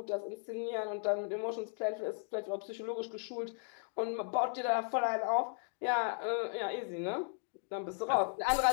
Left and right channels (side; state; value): right; silent; 54 dB below the other